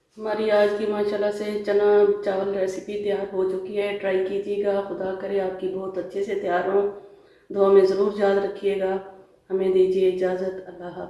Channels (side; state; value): both; identical; correlation 1.00